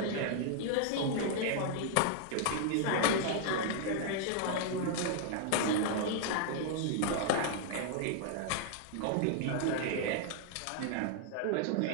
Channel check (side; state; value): both; different; correlation 0.00